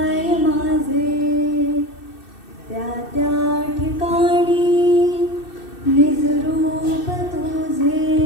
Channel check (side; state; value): right; late; 2.6 ms